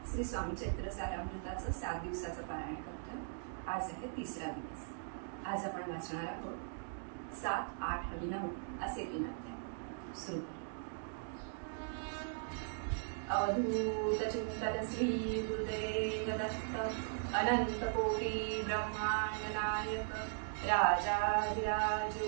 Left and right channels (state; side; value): silent; left; digital silence